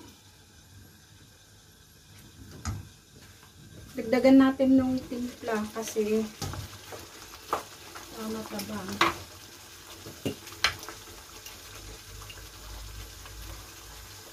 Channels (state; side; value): identical; both; correlation 1.00